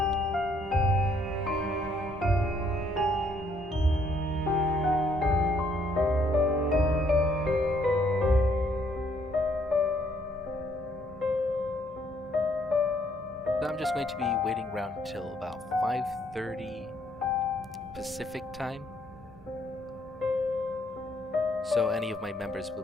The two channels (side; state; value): both; normal; correlation 0.68